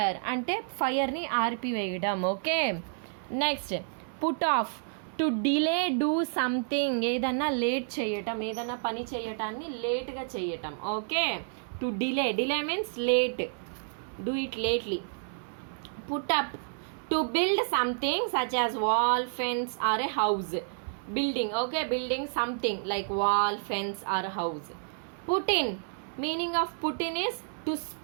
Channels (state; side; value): silent; left; 58 dB below the other